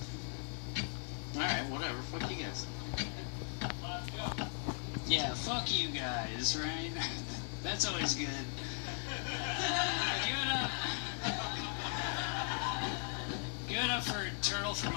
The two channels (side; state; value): right; silent; 52 dB below the other